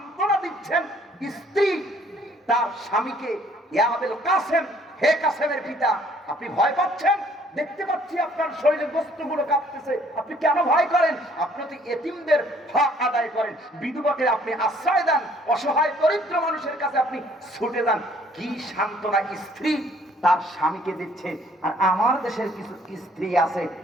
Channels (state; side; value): normal; both; correlation 0.61